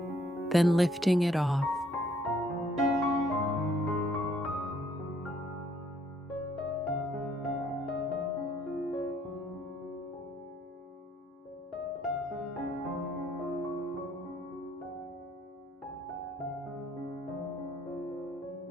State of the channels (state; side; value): normal; both; correlation 0.66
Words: then lifting it off.